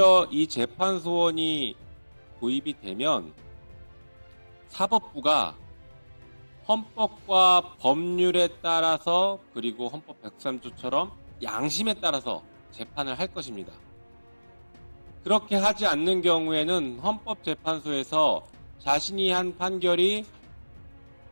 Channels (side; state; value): both; inverted; correlation -1.00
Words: 이 재판소원이 도입이 되면 사법부가 헌법과 법률에 따라서, 그리고 헌법 103조처럼 양심에 따라서 재판을 할 것입니다. 그렇게 하지 않는 경우에는 헌법재판소에서 자신이 한 판결이